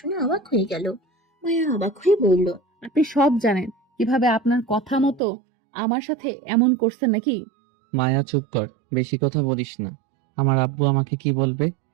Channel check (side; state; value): left; drops out; at 5.2 s